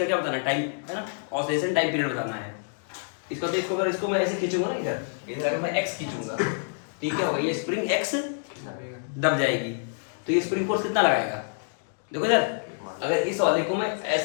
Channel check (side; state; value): right; silent; digital silence